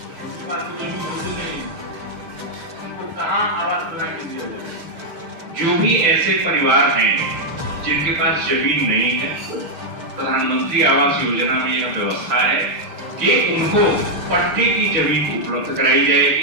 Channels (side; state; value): left; late; 6.5 ms